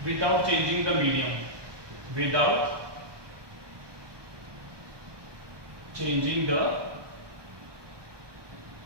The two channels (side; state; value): left; late; 1.2 ms